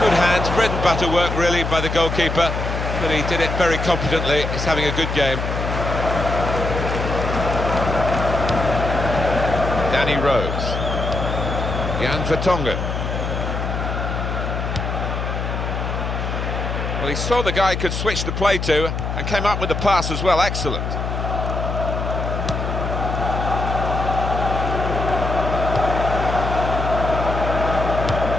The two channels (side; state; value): left; noise; hum, 3 dB below the sound